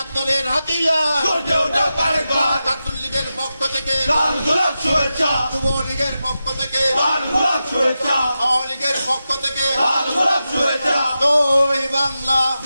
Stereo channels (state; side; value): inverted; both; correlation -0.91